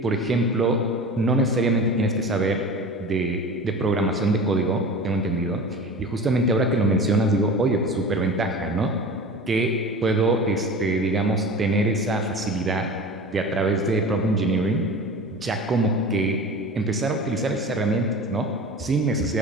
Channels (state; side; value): normal; both; correlation 0.35